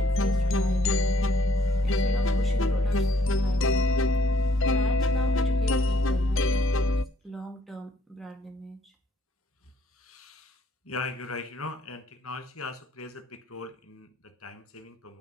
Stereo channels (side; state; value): both; normal; correlation 0.66